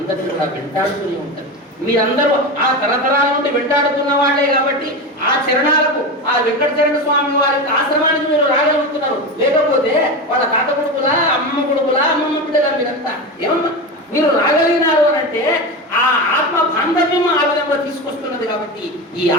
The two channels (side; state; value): both; normal; correlation 0.21